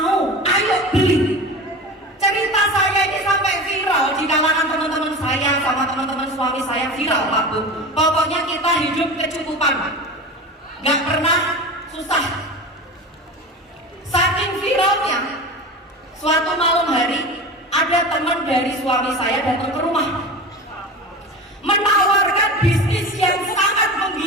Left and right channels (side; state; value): both; normal; correlation 0.30